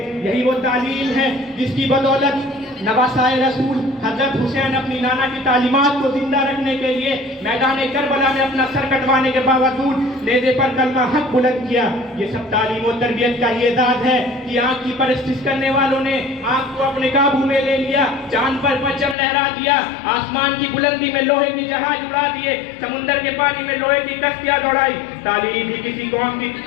یہی وہ تعلیم ہے جس کی بدولت نواسائے رسول حضرت حسین اپنی نانا کی تعلیمات کو زندہ رکھنے کے لیے میدان کربلا میں اپنا سر کٹوانے کے باوجود نیزے پر کلمہ حق بلند کیا۔ یہ سب تعلیم و تربیت کا ہی اعزاز ہے کہ آنکھ کی پرستش کرنے والوں نے آنکھ کو اپنے قابو میں لے لیا، چاند پر پرچم لہرا دیا، آسمان کی بلندی میں لوہے کی جہاز اڑا دیے، سمندر کے پانی میں لوہے کی کشتیاں دوڑائی۔ تعلیم ہی کسی قوم کی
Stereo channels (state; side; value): drops out; right; at 19.2 s